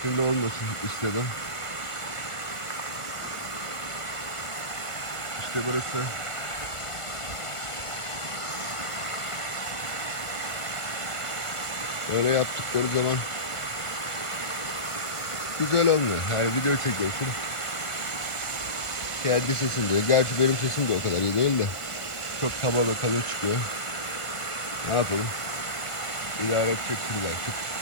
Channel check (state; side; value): late; right; 1.5 ms